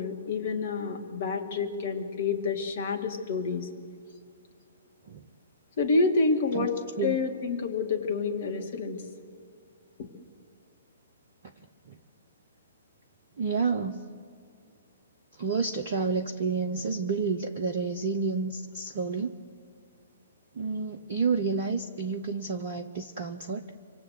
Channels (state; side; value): inverted; both; correlation -0.39